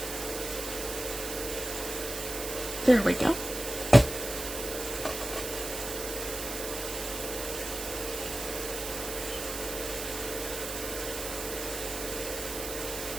There we go.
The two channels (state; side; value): noise; right; hiss, 6 dB below the sound